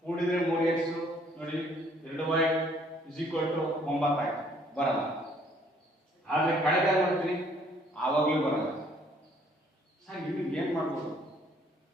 ಕೂಡಿದ್ರೆ 3x ನೋಡಿ, 2y = 9 ಆಯ್ತು, ಬರಲ್ಲ. ಆದ್ರೆ ಕಳೆದಾಗ ನೋಡ್ತೀನಿ ಆವಾಗ್ಲೂ ಬರಲ್ಲ. ಸರ್ ಇಲ್ಲಿ ಏನ್ ಮಾಡ್ಬೋದು?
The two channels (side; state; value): both; normal; correlation 0.62